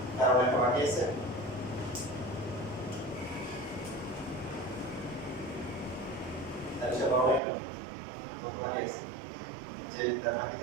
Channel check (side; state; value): left; drops out; at 7.4 s